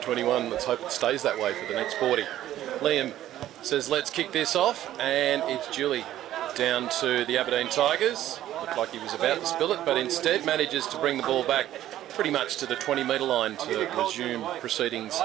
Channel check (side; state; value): left; quieter; 13.0 dB